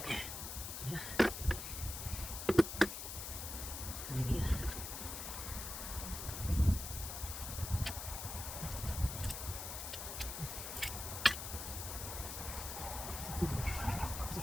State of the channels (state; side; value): noise; left; hiss, 6 dB below the sound